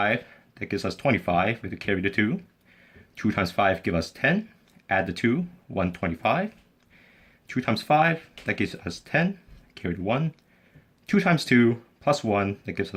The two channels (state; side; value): identical; both; correlation 1.00